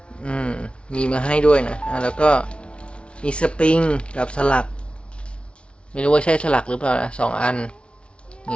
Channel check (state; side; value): late; right; 0.059 ms